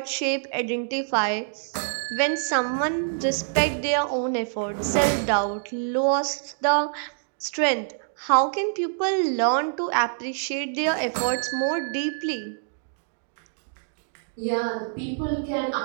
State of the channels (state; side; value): silent; left; digital silence